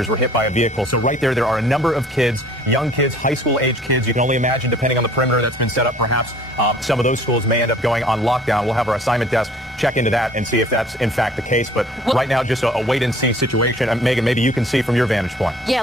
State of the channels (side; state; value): both; normal; correlation 0.54